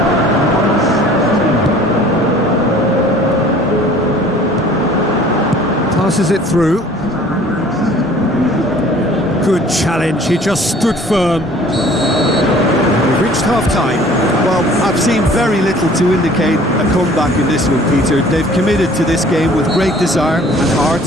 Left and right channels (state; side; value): normal; both; correlation 0.51